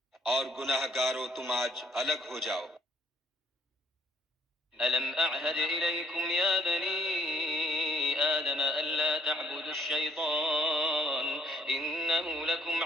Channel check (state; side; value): normal; both; correlation 0.65